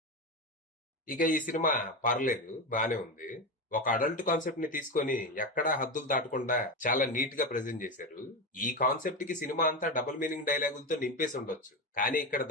ఇక ఈ సినిమా పర్లేదు, బానే ఉంది. ఒక అడల్ట్ కాన్సెప్ట్ ని తీసుకొని ఎక్కడా హద్దులు దాటకుండా చాలా నీట్ గా ప్రెజెంట్ చేశారు. ఈ కాన్సెప్ట్ కి సినిమా అంతా డబుల్ మీనింగ్ డైలాగులతో నింపేసి ఉండొచ్చు. కానీ ఇక్కడ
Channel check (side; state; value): both; normal; correlation 0.16